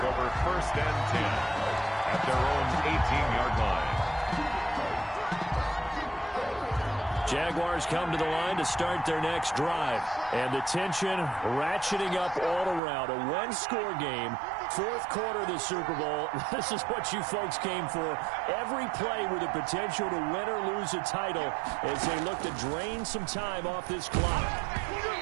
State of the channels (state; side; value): drops out; left; at 12.8 s